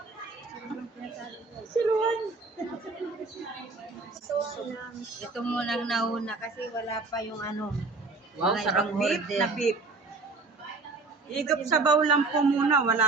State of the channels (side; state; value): left; quieter; 3.8 dB